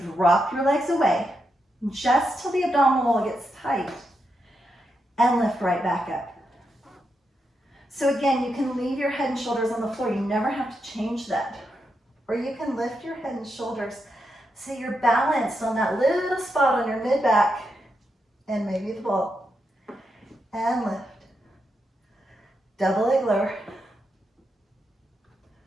drop your legs away just till the abdominal wall gets tight and lift right back up. So again, you can leave your head and shoulders on the floor. You never have to change that. Or you can lift your head and shoulders so you're balanced on that little spot on your mid-back and maybe the ball. And lift. Double leg lower.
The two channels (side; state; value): both; normal; correlation 0.84